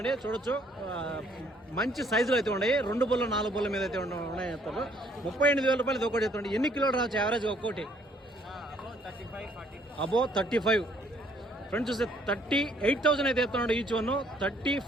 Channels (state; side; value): normal; both; correlation 0.64